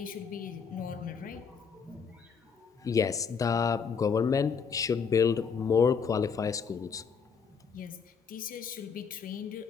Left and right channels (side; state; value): right; quieter; 6.1 dB